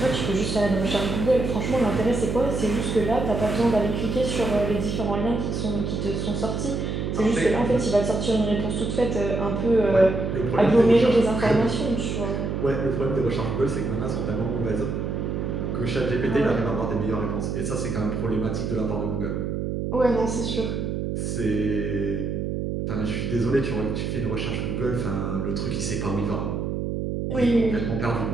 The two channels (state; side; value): noise; right; hum, 2 dB below the sound